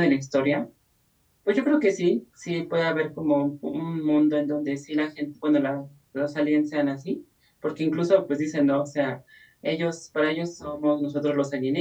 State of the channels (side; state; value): both; identical; correlation 1.00